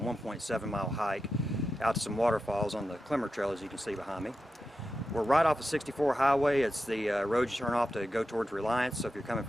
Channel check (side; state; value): both; normal; correlation 0.90